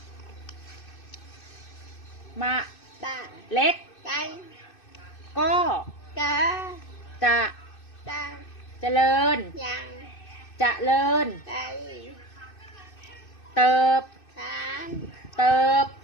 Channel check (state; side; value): late; right; 2.6 ms